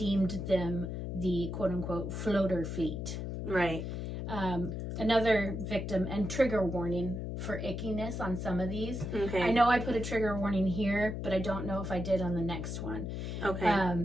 them the quote-unquote floater fleet. Right. Another victim, and trigger warning for ickiness on some of these. Okay. I know I put a trigger warning here, but I don't know if I did on the next one. Okay.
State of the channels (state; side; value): noise; left; hum, 4 dB below the sound